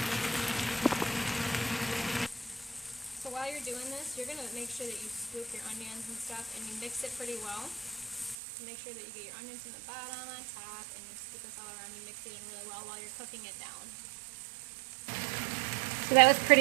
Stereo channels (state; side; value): drops out; left; at 8.3 s